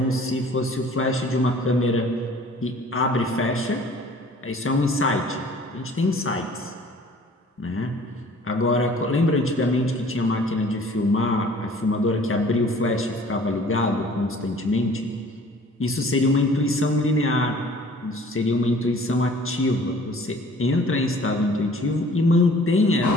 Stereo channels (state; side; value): normal; both; correlation 0.51